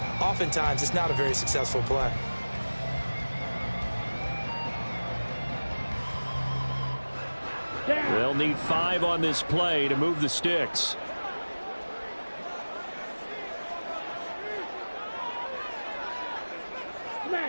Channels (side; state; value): both; inverted; correlation -1.00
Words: oftentimes it's not a very successful play. They'll need 5 on this play to move the sticks.